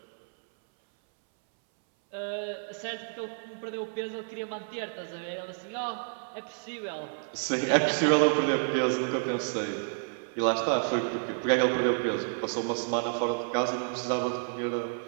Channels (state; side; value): silent; left; 58 dB below the other